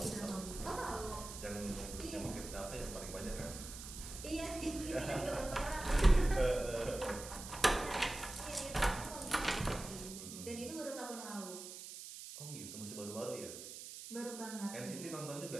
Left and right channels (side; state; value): right; noise; hiss, 10 dB below the sound